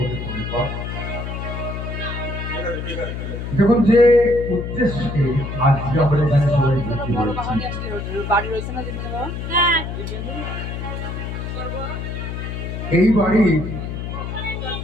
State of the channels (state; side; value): noise; left; hum, 5 dB below the sound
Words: পরিপথ। দেখুন যে উদ্দেশ্যে আজকে আমরা এখানে সবাই ভর্তি হয়েছি, বাড়ি রয়েছে না জিনিস হ্যাঁ এই বাড়ির